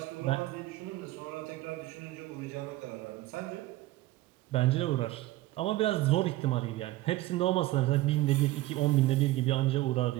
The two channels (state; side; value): quieter; left; 17.4 dB